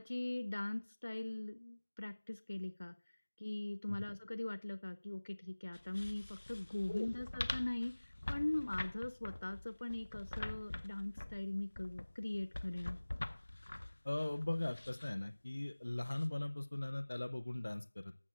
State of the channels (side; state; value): both; inverted; correlation -1.00